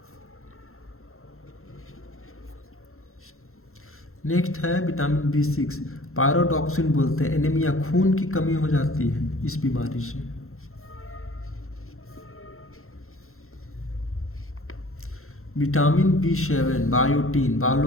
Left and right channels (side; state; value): right; late; 0.62 ms